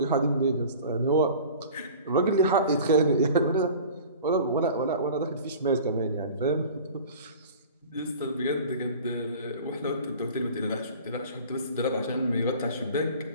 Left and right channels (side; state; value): both; inverted; correlation -0.41